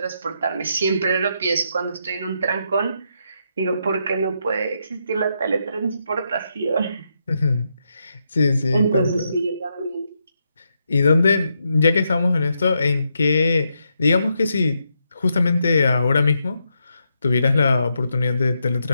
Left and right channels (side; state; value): both; inverted; correlation -0.81